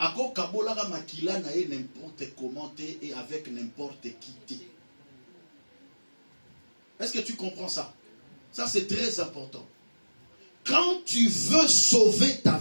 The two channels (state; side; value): inverted; both; correlation -1.00